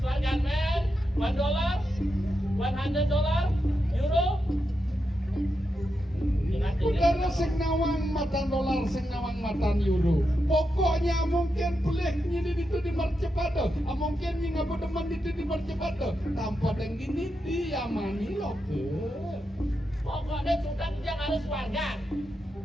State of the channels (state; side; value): normal; both; correlation 0.86